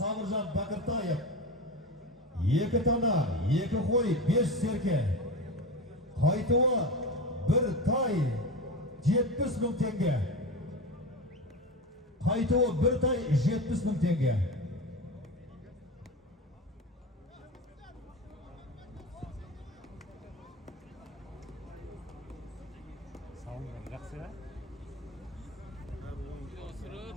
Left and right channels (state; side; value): normal; both; correlation 0.24